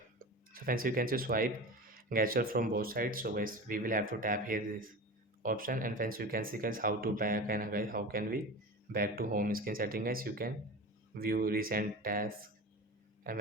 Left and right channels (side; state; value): both; normal; correlation 0.31